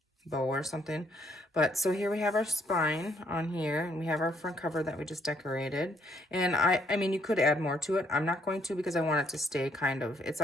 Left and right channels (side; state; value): both; normal; correlation 0.70